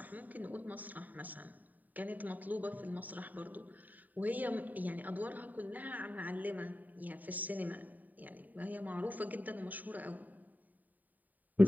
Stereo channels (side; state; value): left; late; 0.083 ms